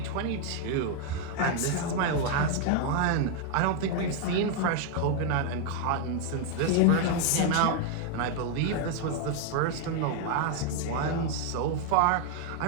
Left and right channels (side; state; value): both; different; correlation 0.00